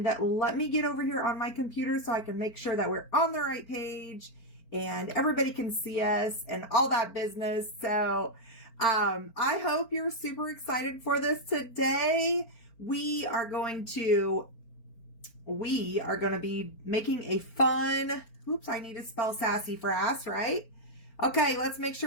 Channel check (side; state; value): right; late; 4.4 ms